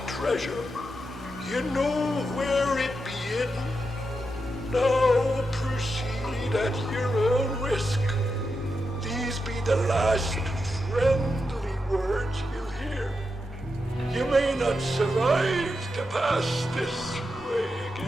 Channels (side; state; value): both; normal; correlation 0.87